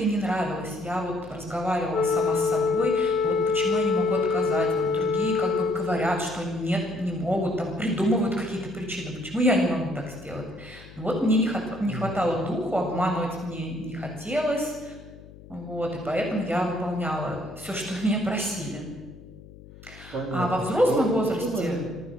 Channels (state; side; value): noise; left; hum, 19 dB below the sound